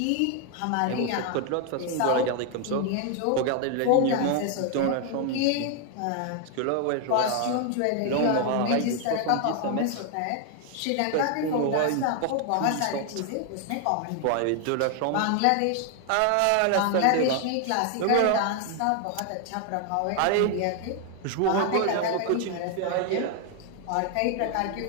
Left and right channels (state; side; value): different; both; correlation 0.00